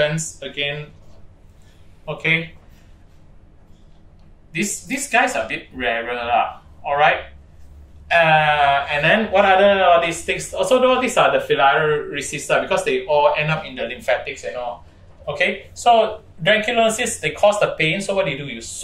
again. Okay. These guys are a bit rarer, alright. And then what other all these things? Also, all these are the filariaceae because they all end up in the lymphatics and all. Okay, so dranculosis, they cause the pain. So what do? You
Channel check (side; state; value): both; identical; correlation 1.00